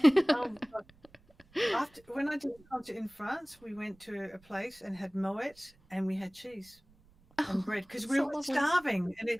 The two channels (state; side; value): noise; right; rumble, 29 dB below the sound